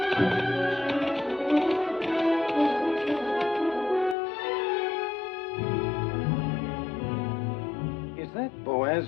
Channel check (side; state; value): right; drops out; at 4.2 s